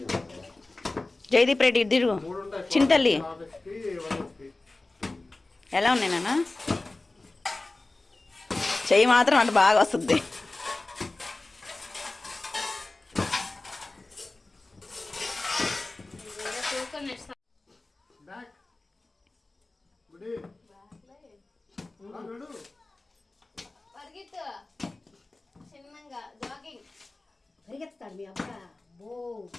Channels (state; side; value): quieter; right; 3.1 dB